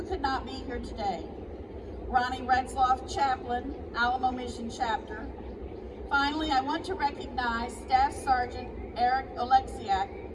could not be here today. Ronnie Retzloff, Chaplain, Alamo Mission Chapter. Finally, I want to recognize Staff Sergeant Eric Oleksiak,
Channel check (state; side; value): identical; both; correlation 1.00